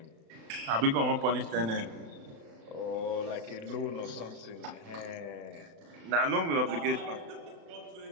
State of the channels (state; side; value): late; left; 36 ms